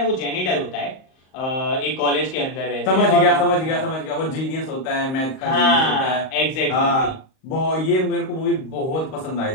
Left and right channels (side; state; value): right; late; 38 ms